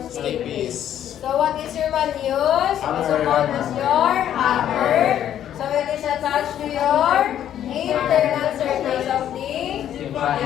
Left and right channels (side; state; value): right; quieter; 10.7 dB